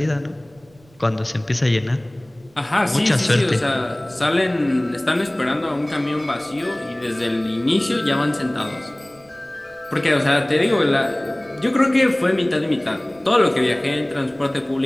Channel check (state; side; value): noise; right; rumble, 29 dB below the sound